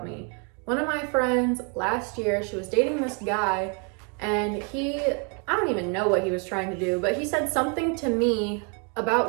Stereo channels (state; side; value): quieter; left; 37.4 dB